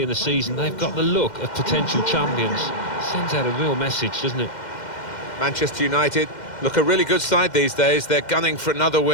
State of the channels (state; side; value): late; right; 2.1 ms